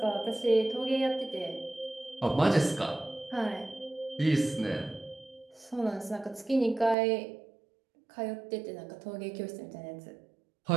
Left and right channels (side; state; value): left; drops out; at 7.0 s